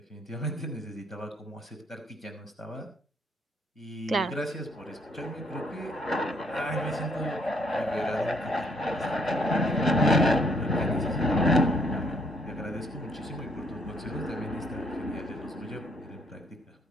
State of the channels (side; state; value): both; normal; correlation 0.68